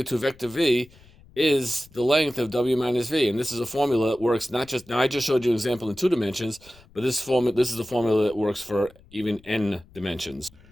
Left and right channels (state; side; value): noise; left; rumble, 25 dB below the sound